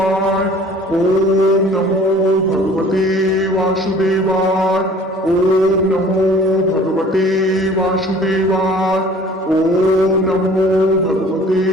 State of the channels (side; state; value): both; normal; correlation 0.50